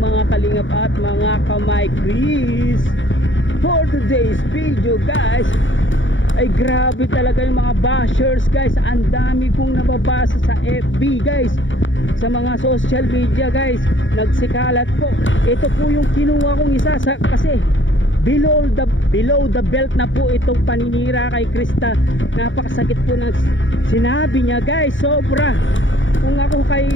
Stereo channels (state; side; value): late; right; 0.56 ms